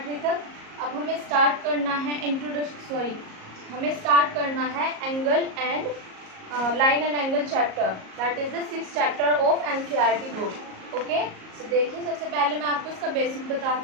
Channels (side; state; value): left; late; 38 ms